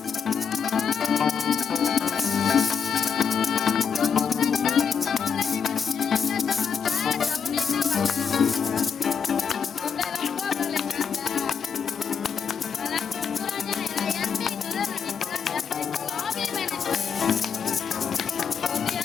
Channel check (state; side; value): quieter; right; 6.5 dB